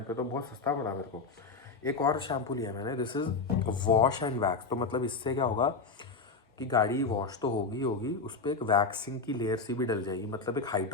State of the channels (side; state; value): right; quieter; 4.3 dB